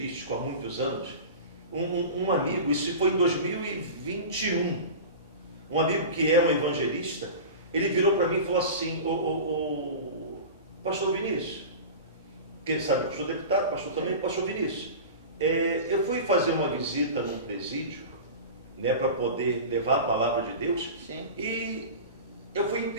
há muitos anos, um amigo, isso foi em 2021, um amigo que é um evangelista, ele virou para mim e falou assim: pastor Vinícius, que ele sabe que eu sou deputado, pastor também, pastor Vinícius, eu fui fazer uma visita num presídio, né, para poder levar a palavra de Deus. Sim. E eu fui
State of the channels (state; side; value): inverted; both; correlation -0.31